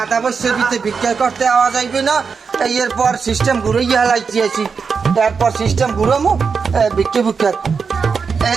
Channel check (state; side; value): quieter; left; 5.6 dB